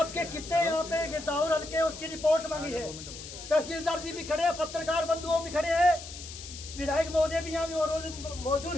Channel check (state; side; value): noise; left; hiss, 12 dB below the sound